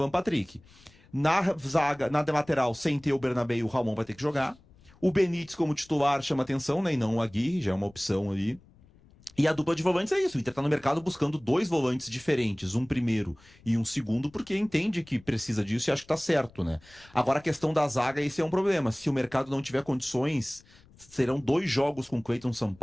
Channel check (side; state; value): left; noise; rumble, 27 dB below the sound